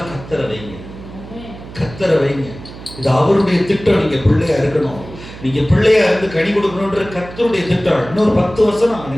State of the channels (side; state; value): right; noise; hum, 15 dB below the sound